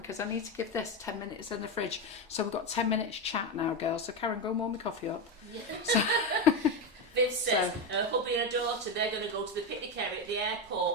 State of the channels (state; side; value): normal; both; correlation 0.12